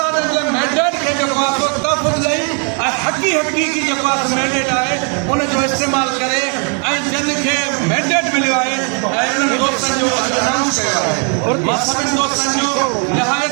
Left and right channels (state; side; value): quieter; left; 39.7 dB